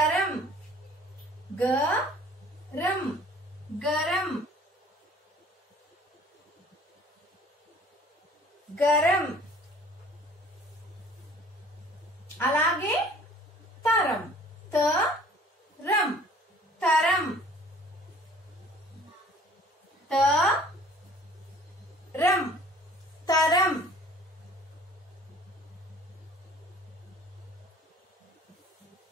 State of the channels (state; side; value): normal; both; correlation 0.51